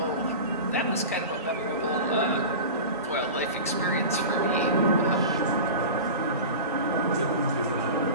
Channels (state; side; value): inverted; both; correlation -0.31